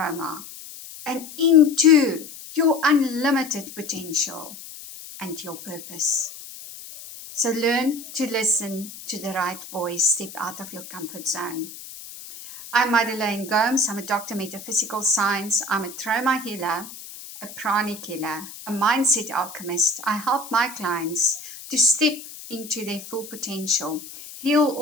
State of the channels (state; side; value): noise; left; hiss, 14 dB below the sound